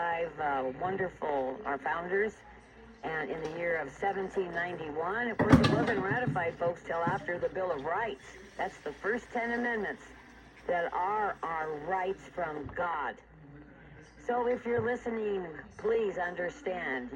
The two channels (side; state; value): both; identical; correlation 1.00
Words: wonderful our founders, and in the year of 1791. Of course, it wasn't ratified, folks, till after the Bill of Rights. That's the first 10 amendments that are our rights from God. So if you're listening, please understand.